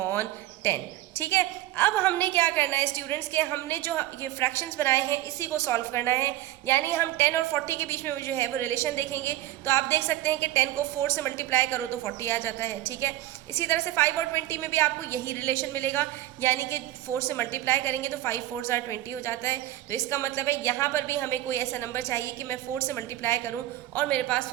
ठीक है, अब हमने क्या करना है स्टूडेंट्स के, हमने जो ये फ्रैक्शंस बनाए हैं इसी को सॉल्व करना है, यानी हम 10 और 40 के बीच में जो है वो रिलेशन देखेंगे। तो आप देख सकते हैं कि 10 को 4 से मल्टीप्लाई करो तो 40 आ जाता है। ठीक है, इसी तरह से 5 और 20 में भी आपको यही रिलेशन मिलेगा, यानी कि 4 से मल्टीप्लाई करेंगे तो 5 4s are 20 हो जाता है। तो इसका मतलब है यहाँ पर भी हमें कोई ऐसा नंबर चाहिए कि मैं 4 से मल्टीप्लाई करूँ और मेरे पास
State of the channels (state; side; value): quieter; left; 15.0 dB